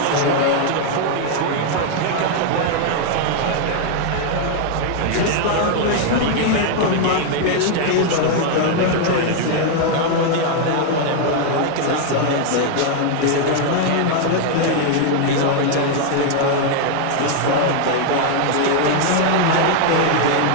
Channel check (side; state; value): both; different; correlation 0.00